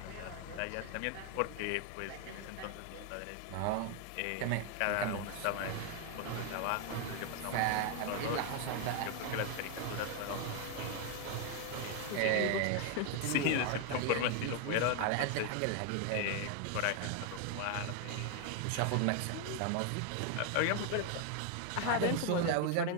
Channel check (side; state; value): both; different; correlation 0.01